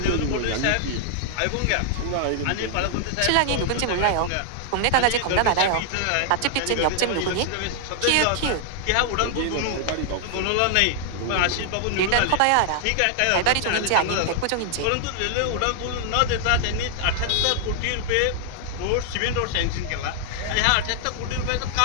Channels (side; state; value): both; different; correlation -0.01